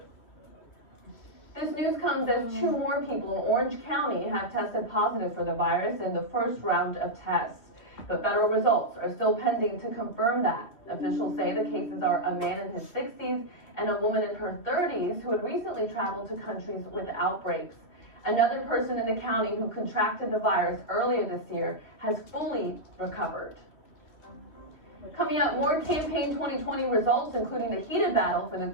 This news comes as 2 more people in Orange County have tested positive for the virus in the first round of tests. But federal results are still pending to confirm that. Officials say the cases are a man in his 60s and a woman in her 30s who had recently traveled to countries with outbreaks. Another person in the county who contracted the virus earlier this year has fully recovered. Coming up, more campaign 2020 results, including the heated battle for the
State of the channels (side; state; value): right; late; 3.3 ms